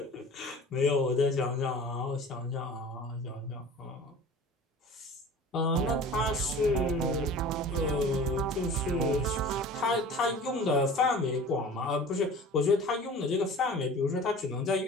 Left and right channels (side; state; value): both; normal; correlation 0.41